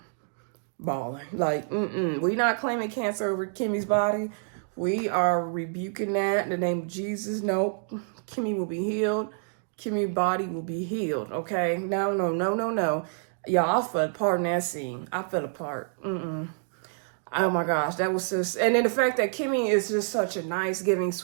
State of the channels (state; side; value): silent; left; digital silence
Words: we not claiming cancer over Kimmy's body. We are rebuking that in the name of Jesus. Nope. Kimmy will be healed. Kimmy's body will be healed, okay? No. Y'all, I fell apart in that scene. I fell apart. Oh my gosh, that was just... And then the fact that Kimmy is just such a nice, giving,